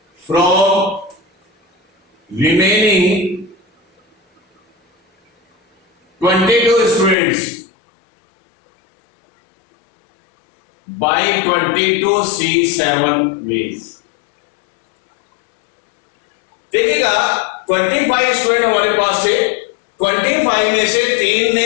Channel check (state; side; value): drops out; right; at 7.2 s